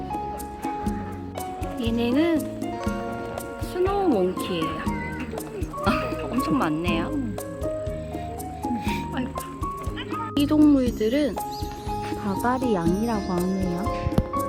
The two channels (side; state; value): both; identical; correlation 1.00